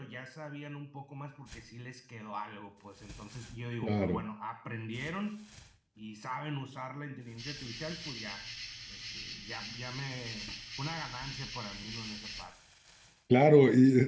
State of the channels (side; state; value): both; identical; correlation 1.00